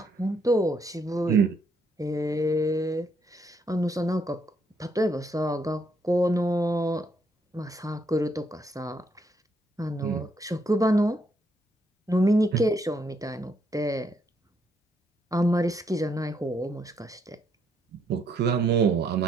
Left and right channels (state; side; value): normal; both; correlation 0.74